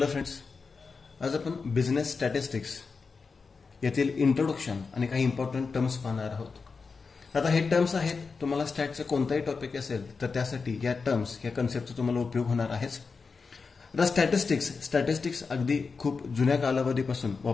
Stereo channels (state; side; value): quieter; right; 4.8 dB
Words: फ्रेंड्स, आज आपण बिझनेस स्टॅटिस्टिक्स यातील इंट्रोडक्शन आणि काही इम्पॉर्टंट टर्म्स पाहणार आहोत। आता हे टर्म्स आहेत, तुम्हाला स्टॅटचं कोणताही टॉपिक असेल तर त्यासाठी या टर्म्स या कन्सेप्टचा तुम्हाला उपयोग होणार आहेच। आता स्टॅटिस्टिक्स अगदी खूप जुन्या कालावधीपासून